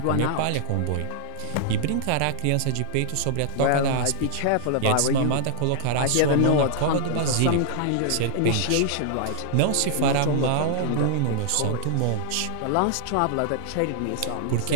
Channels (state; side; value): different; both; correlation -0.02